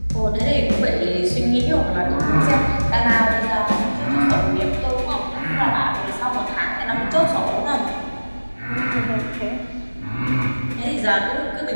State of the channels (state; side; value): inverted; both; correlation -1.00